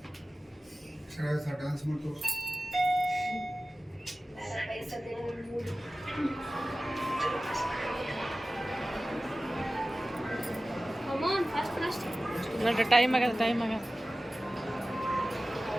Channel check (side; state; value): both; normal; correlation 0.96